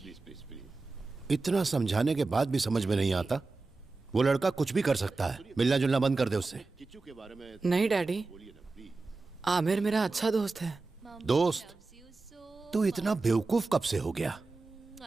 please please please. इतना समझाने के बाद भी समझ में नहीं आता। वो लड़का कुछ भी कर सकता है, मिलना जुलना बंद कर दे उससे। नहीं डैडी, आमिर मेरा अच्छा दोस्त है। दोस्त? तू इतना बेवकूफ कब से हो गया?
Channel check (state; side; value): quieter; left; 3.7 dB